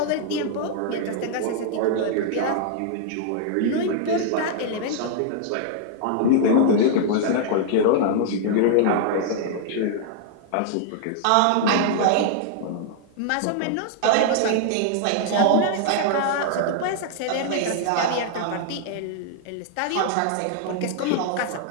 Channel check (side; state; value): both; different; correlation -0.01